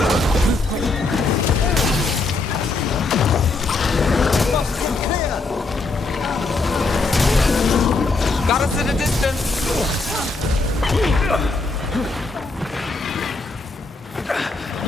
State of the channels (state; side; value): quieter; right; 3.5 dB